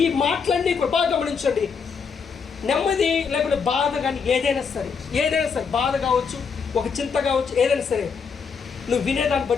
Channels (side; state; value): right; quieter; 5.8 dB